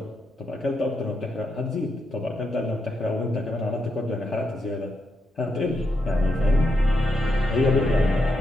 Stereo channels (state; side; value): normal; both; correlation 0.83